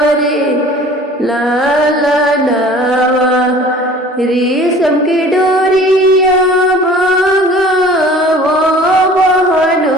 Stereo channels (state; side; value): normal; both; correlation 0.47